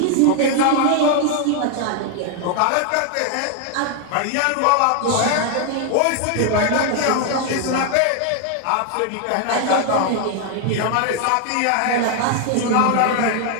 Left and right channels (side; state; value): both; different; correlation 0.00